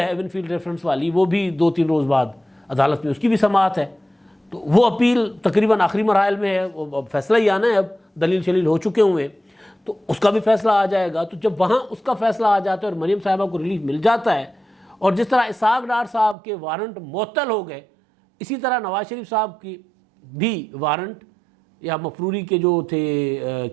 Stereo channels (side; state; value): left; drops out; at 16.4 s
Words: ایون فیلڈ ریفرنس والی، وہ بھی 2-3 روز بعد عدالت میں اس کی بھی سماعت ہے. تو وہ اپیل تقریباً آخری مراحل میں ہے، وہ فیصلہ ہی آنا ہے، اب دلیل شلیل ہو چکے ہوئے ہیں، تو اس کا بھی فیصلہ آ جائے گا. تو جب وہاں اس کا فیصلہ آ جاتا ہے اور مریم صاحبہ کو ریلیف مل جاتا ہے، اور جس طرح اسحاق ڈار صاحب کے وارنٹ معطل ہو گئے، اسی طرح نواز شریف صاحب کی بھی وارنٹ یا مفروری کے جو تھے